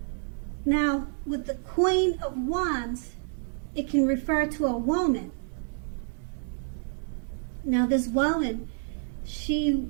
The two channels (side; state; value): left; silent; 59 dB below the other